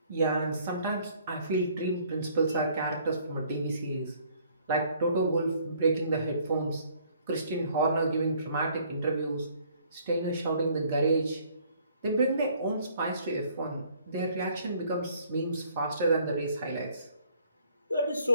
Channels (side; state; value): both; inverted; correlation -0.62